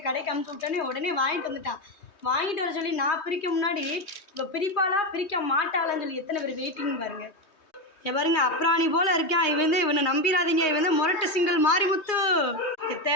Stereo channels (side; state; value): right; late; 3.2 ms